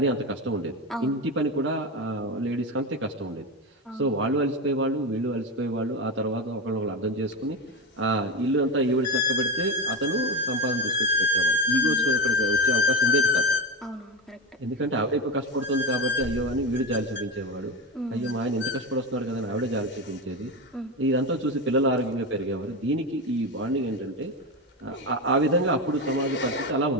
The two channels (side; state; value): both; normal; correlation 0.17